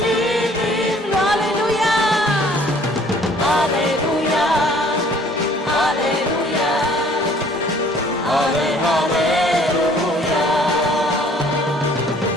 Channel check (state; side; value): normal; both; correlation 0.56